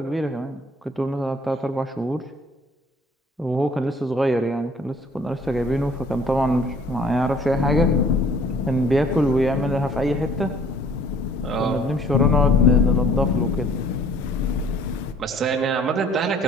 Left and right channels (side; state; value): both; normal; correlation 0.56